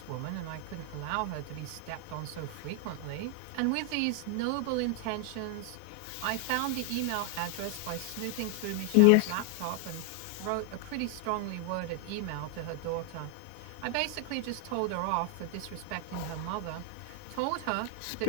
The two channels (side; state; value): both; different; correlation 0.00